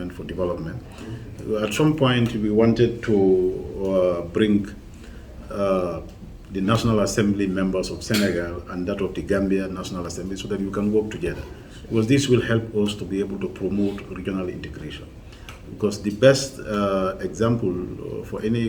for development. At some point, we wanted to bring the National Assembly members of Senegal and that of the Gambia National Assembly so that we can work together. Because this will help us to be able to promote regional integration. Because the best example for any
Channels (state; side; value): identical; both; correlation 1.00